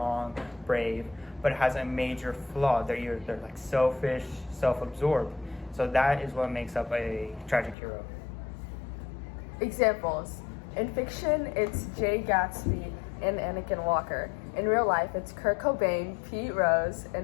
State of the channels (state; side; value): drops out; right; at 7.8 s